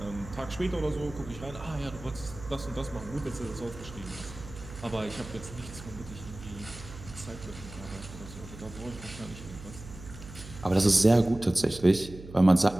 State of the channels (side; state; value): right; noise; hum, 14 dB below the sound